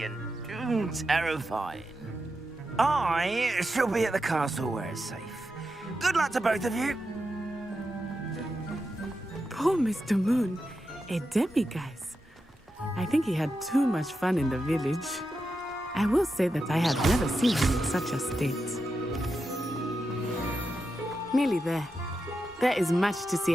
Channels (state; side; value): normal; both; correlation 0.88